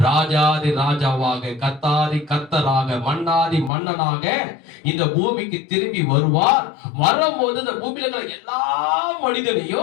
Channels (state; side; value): drops out; right; at 3.7 s